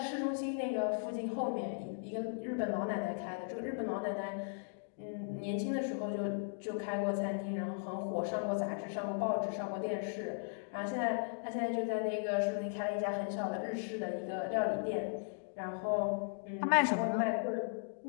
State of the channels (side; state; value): right; silent; digital silence